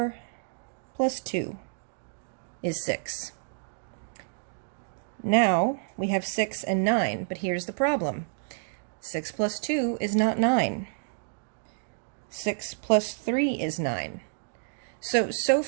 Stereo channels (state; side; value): silent; left; digital silence